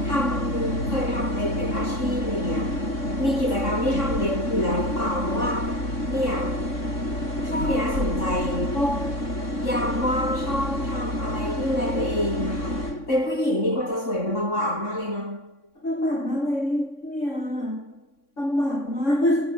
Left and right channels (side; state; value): right; late; 3.6 ms